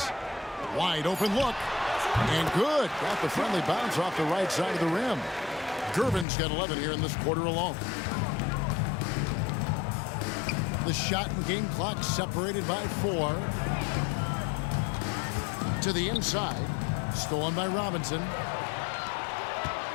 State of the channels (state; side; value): drops out; right; at 6.2 s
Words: Wide open look. And good. Got the friendly bounce off the right side of the rim. Gervin's got 11 here in this quarter alone. The shot and game clock separated by 4. To the inside. Stolen by Robinson.